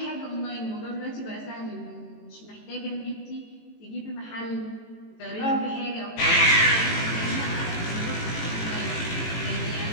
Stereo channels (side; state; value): right; late; 18 ms